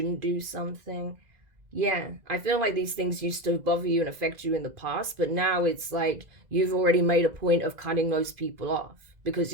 do something. Yeah, I feel like these things used to bother you and affect you in the past, but now it's like you've already made a point of cutting those people off because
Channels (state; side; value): late; left; 2.0 ms